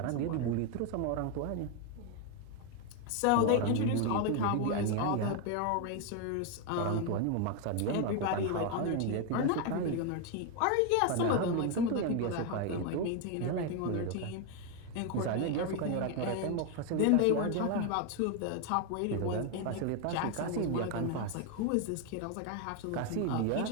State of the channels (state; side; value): different; both; correlation 0.01